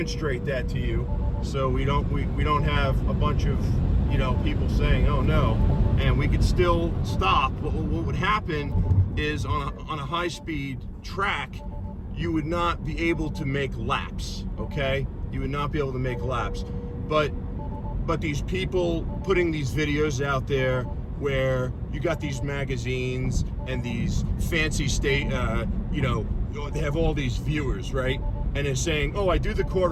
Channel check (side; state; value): both; identical; correlation 1.00